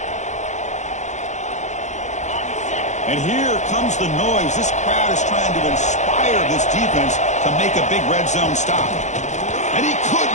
And here comes the noise. This crowd is trying to inspire this defense to make a big red zone stop. And he could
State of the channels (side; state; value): right; late; 0.34 ms